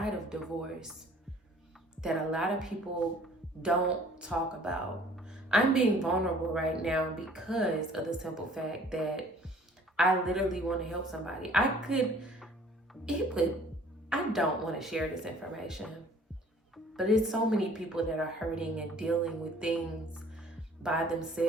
of divorce that a lot of people don't talk about. I'm being vulnerable right now because of the simple fact that I literally want to help somebody. I don't want to share this information, but it's so many people that are hurting and dealing with things by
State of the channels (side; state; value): both; normal; correlation 0.54